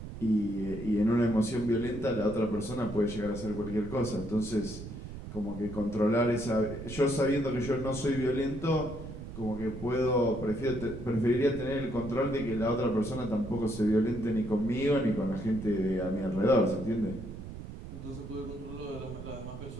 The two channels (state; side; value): noise; right; rumble, 10 dB below the sound